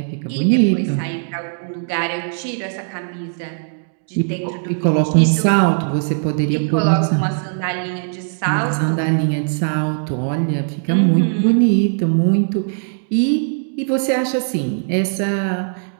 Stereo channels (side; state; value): left; silent; digital silence